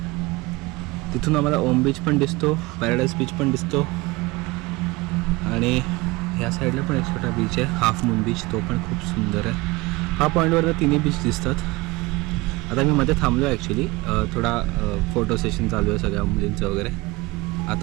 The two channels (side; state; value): left; quieter; 22.1 dB